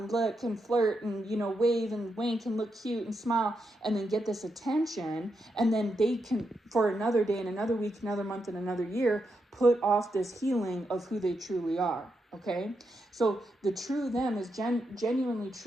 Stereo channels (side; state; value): both; normal; correlation 0.84